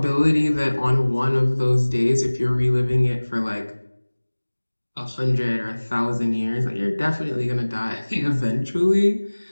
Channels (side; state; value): both; inverted; correlation -1.00